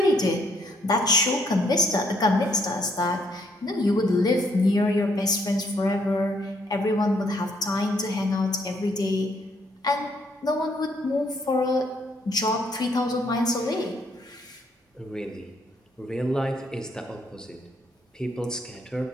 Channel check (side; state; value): both; normal; correlation 0.70